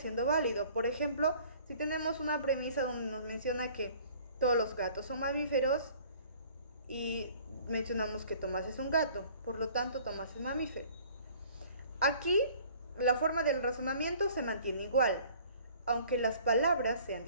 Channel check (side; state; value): both; inverted; correlation -0.52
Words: válido. Por ejemplo, si tenemos una premisa donde nos menciona que todos los gatos son mamíferos y mencionamos que Tomás es un gato, por lo tanto Tomás es mamífero. Aquí la forma del razonamiento se mantiene igual, aunque las palabras sean